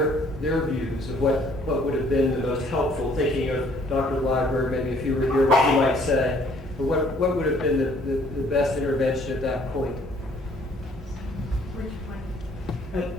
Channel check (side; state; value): both; normal; correlation 0.60